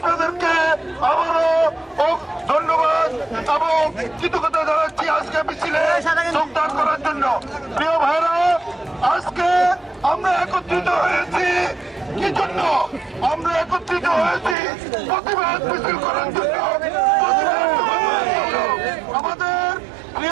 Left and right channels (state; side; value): drops out; left; at 14.6 s